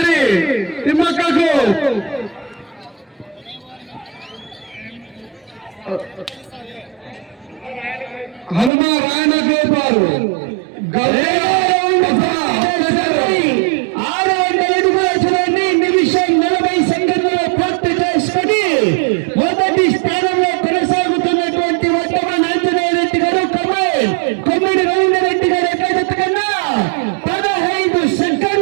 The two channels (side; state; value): left; drops out; at 8.7 s